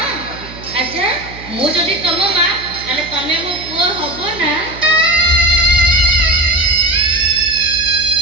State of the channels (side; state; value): right; noise; hum, 16 dB below the sound